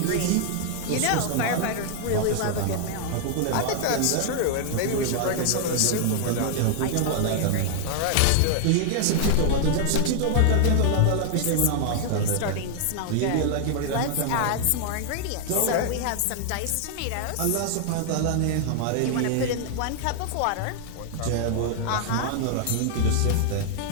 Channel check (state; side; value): different; both; correlation 0.00